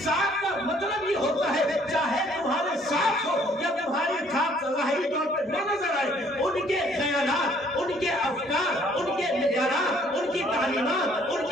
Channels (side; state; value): both; normal; correlation 0.61